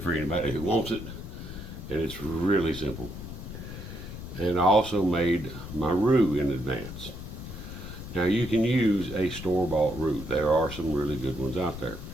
anybody who wants it. And it's really simple. And I also made my roux in advance. Now you can use a store-bought roux. There are some really good ones out there.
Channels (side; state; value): left; noise; rumble, 10 dB below the sound